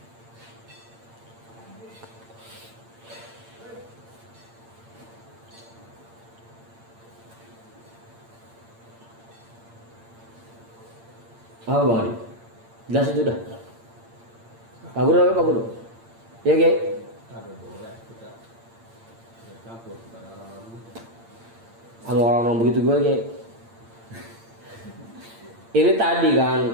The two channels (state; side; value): late; left; 8.8 ms